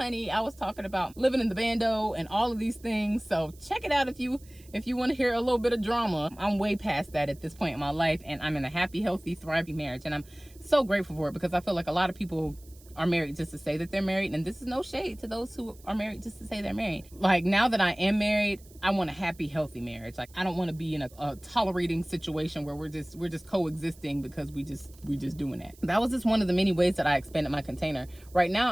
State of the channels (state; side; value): noise; right; hiss, 25 dB below the sound